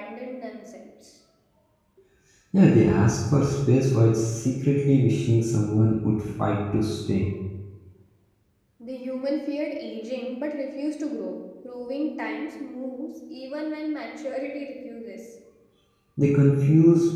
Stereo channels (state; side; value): identical; both; correlation 1.00